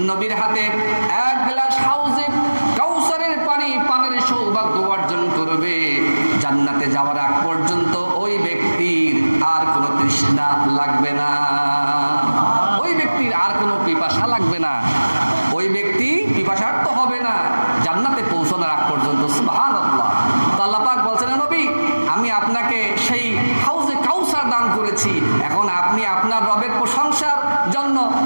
নবীর হাতে 1 গ্লাস হাউজে কাউসারের পানি পানের সৌভাগ্য অর্জন করবে, জান্নাতে যাওয়ার আগ পর্যন্ত ওই ব্যক্তির আর কোনো তৃষ্ণা লাগবে না, ওই ব্যক্তির আর কোনো পিপাসা লাগবে না, ওই ব্যক্তি পিপাসার্ত হবে না জান্নাতে পৌঁছানোর আগ পর্যন্ত। সুবহানাল্লাহ। তো আল্লাহ পাক বলছেন, নবী আমি আপনাকে সেই হাউজে কাউসার দান করেছি, এখন আপনি আপনার রবের প্রশংসার জন্য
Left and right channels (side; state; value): both; inverted; correlation -1.00